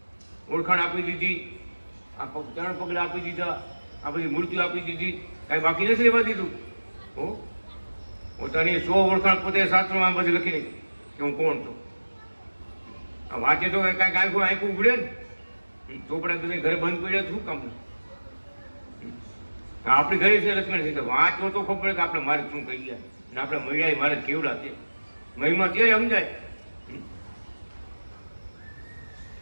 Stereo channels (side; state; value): both; inverted; correlation -1.00